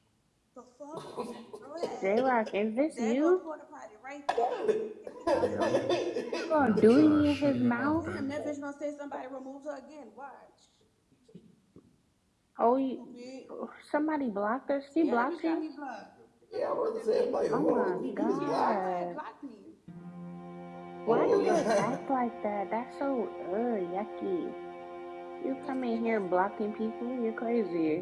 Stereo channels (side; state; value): both; identical; correlation 1.00